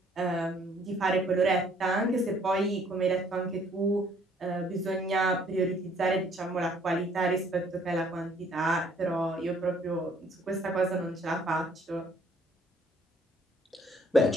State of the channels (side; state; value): both; normal; correlation 0.62